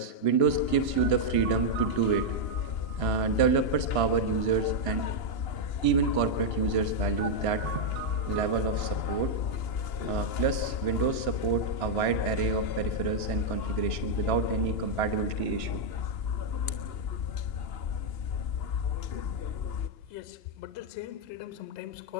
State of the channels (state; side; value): late; right; 3.0 ms